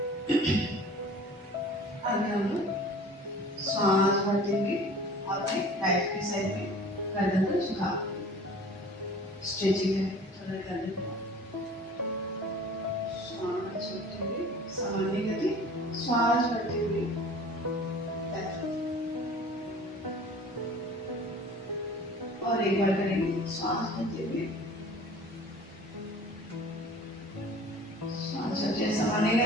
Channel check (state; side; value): normal; both; correlation 0.45